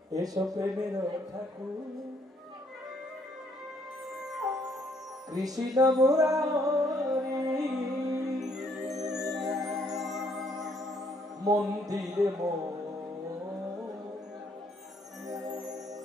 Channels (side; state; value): both; normal; correlation 0.68